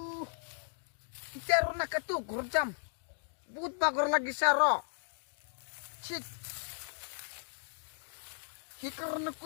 ইতিয়া আর না কাটু ঘর যাম বহুত বাগর লাগিছে আর ঠিক সেইকাৰণে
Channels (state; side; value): silent; right; digital silence